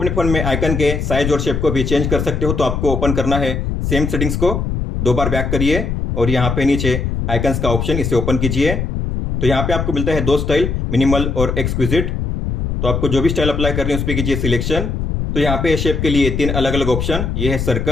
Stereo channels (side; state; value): left; noise; rumble, 2 dB below the sound